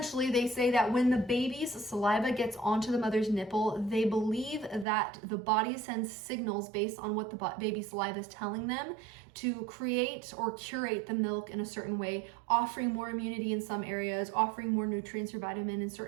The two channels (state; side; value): drops out; left; at 4.9 s